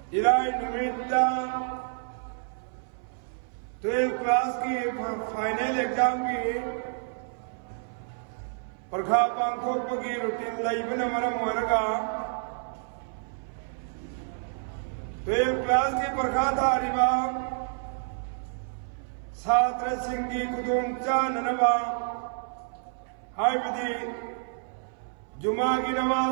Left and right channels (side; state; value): left; silent; 59 dB below the other